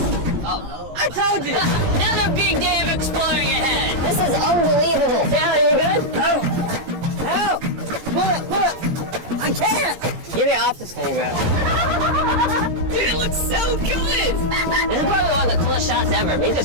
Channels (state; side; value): late; left; 17 ms